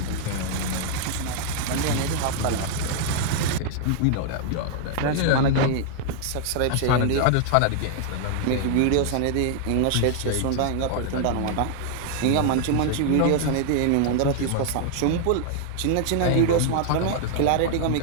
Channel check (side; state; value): both; different; correlation 0.00